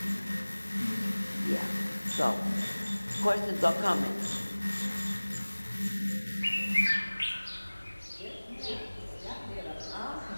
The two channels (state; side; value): inverted; both; correlation -1.00